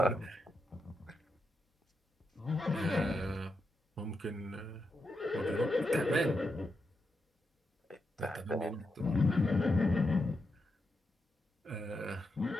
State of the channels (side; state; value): both; normal; correlation 0.85